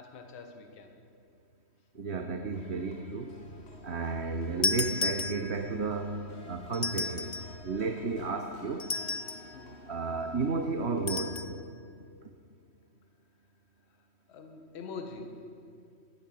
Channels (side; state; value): right; late; 3.1 ms